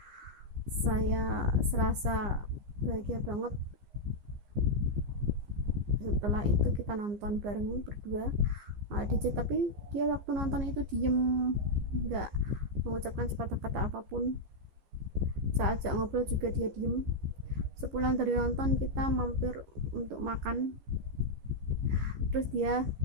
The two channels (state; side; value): late; left; 15 ms